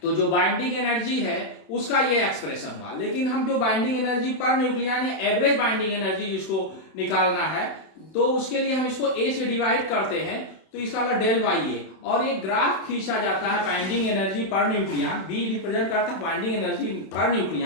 तो जो बाइंडिंग एनर्जी है उसका ये एक्सप्रेशन हुआ। लेकिन हम जो बाइंडिंग एनर्जी पर न्यूक्लियन है, एवरेज बाइंडिंग एनर्जी जिसको निकालना है, तो उसके लिए हम इसको A से डिवाइड करते हैं, तो इसका होगा डेल बाई ए, और एक ग्राफ खींचा जाता है binding energy per nucleon. B represent करता है बाइंडिंग एनर्जी पर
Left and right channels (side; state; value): right; late; 31 ms